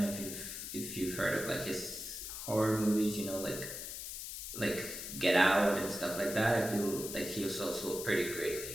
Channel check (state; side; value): noise; left; hiss, 7 dB below the sound